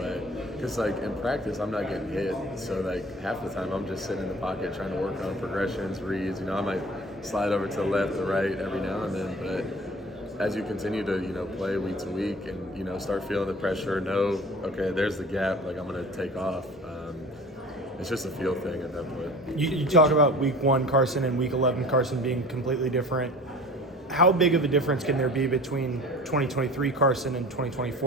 Because in practice, I'm not getting hit. So half the time, I'm just sitting in the pocket trying to work on progressions, reads. I might slide over to the left or right every now and then. But as you continue to play week to week and start feeling the pressure, know okay, there's the gap. I'm going to take off. It's just a feel thing at that point. You talk about week 1 Carson and week 11 Carson being completely different. How big of a difference can there be between 2023 Carson and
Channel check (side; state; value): both; normal; correlation 0.42